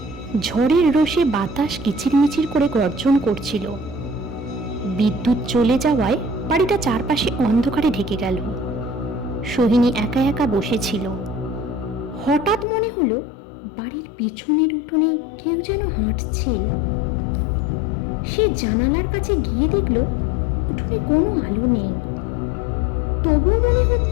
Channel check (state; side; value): drops out; right; at 12.7 s